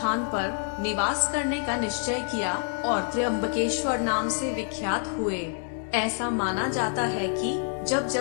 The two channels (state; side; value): silent; right; 60 dB below the other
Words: पर निवास करने का निश्चय किया और त्र्यंबकेश्वर नाम से विख्यात हुए। ऐसा माना जाता है कि जब